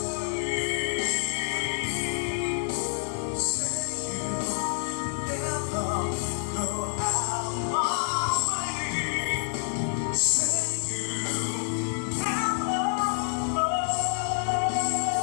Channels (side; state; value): right; silent; 59 dB below the other